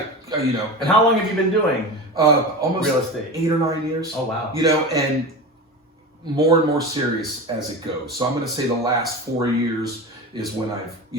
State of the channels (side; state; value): both; normal; correlation 0.27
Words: And how long have you been doing almost real estate? 8 or 9 years. Oh wow. And more and more serious as it goes. So I'm going to say the last 4 years is when I've,